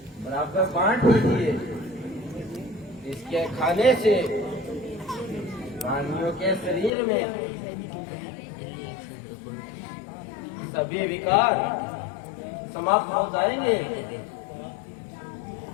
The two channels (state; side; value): drops out; right; at 6.9 s